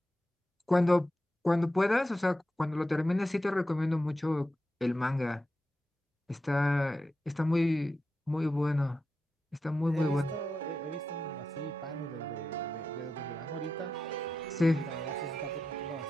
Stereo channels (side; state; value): both; normal; correlation 0.89